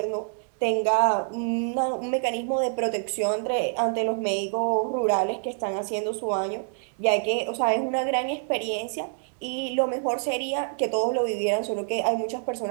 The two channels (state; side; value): silent; left; 61 dB below the other